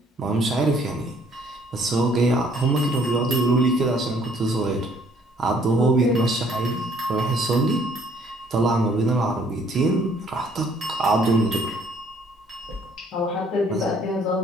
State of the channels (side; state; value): both; normal; correlation 0.62